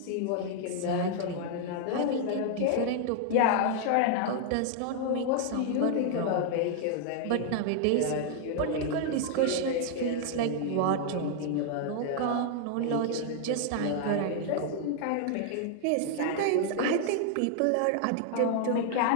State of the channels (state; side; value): different; both; correlation 0.00